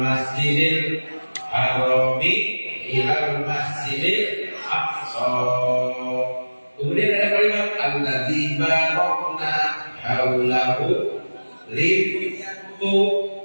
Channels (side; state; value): both; inverted; correlation -1.00